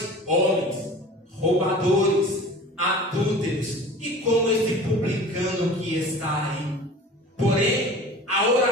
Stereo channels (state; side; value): normal; both; correlation 0.40